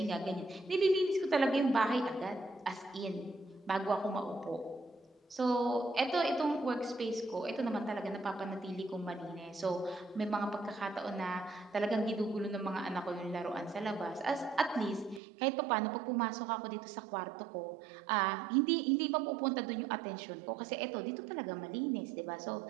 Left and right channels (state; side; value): drops out; left; at 15.2 s